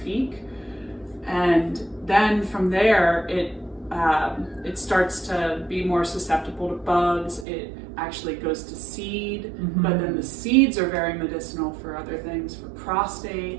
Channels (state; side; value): drops out; left; at 7.5 s